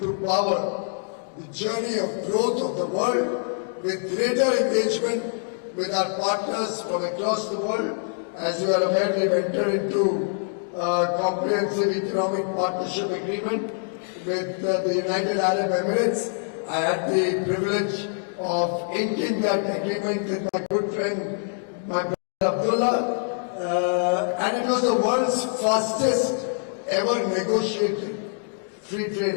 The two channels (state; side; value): silent; right; digital silence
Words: power the journey of growth of the world with greater engagement with our partners from across the world. As you are aware, we have entered into a comprehensive economic partnership agreement with the United Arab Emirates. I had the privilege of inking that agreement with my good friend, my brother Abdullah, and it was the world's fastest ever negotiated free trade